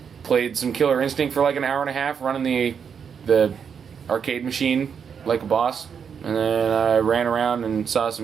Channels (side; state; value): left; quieter; 7.0 dB